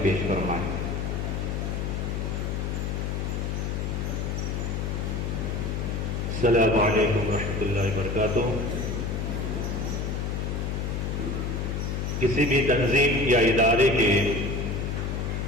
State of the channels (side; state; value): left; noise; hum, 1 dB below the sound